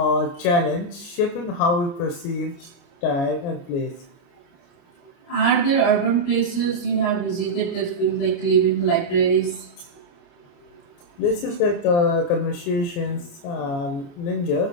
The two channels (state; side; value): late; right; 29 ms